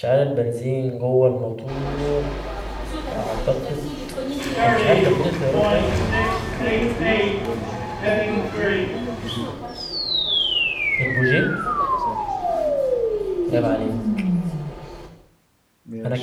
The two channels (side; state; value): both; identical; correlation 1.00